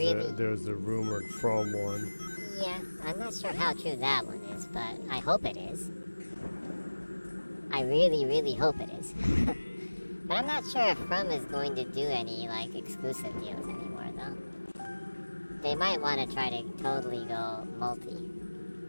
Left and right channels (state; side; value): inverted; both; correlation -1.00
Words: there's a rumored from one. Yeah, I'm not sure how true that one is, but I hope it is. I really, really hope it is. But I'm not sure if From is going to do any, like, exclusive deals anymore, though. They might want to try to totally go multi.